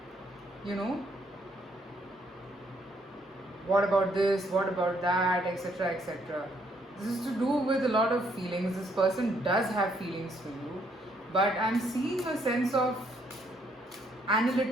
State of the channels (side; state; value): both; normal; correlation 0.70